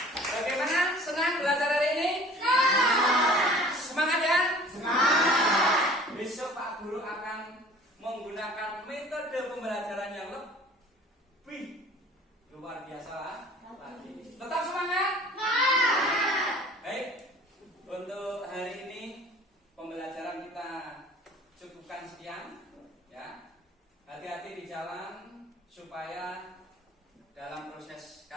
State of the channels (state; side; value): normal; both; correlation 0.48